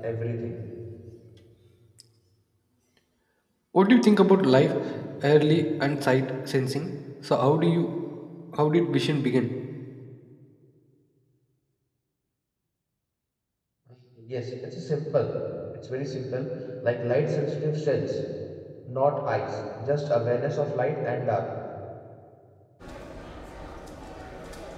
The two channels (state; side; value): identical; both; correlation 1.00